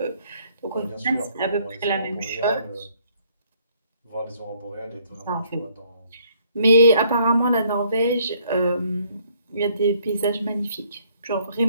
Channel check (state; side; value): inverted; both; correlation -0.65